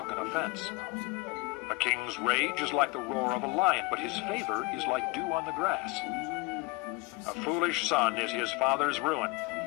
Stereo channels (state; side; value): quieter; right; 23.8 dB